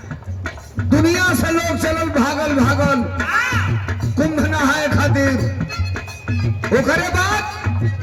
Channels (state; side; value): identical; both; correlation 1.00